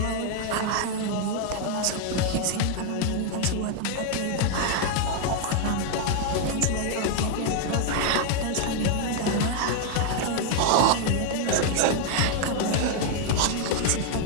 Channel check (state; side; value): different; both; correlation 0.00